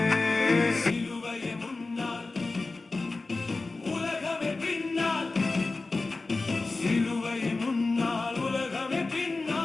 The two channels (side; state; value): right; quieter; 3.5 dB